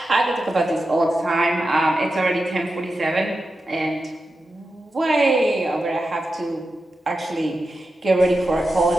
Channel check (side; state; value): both; normal; correlation 0.91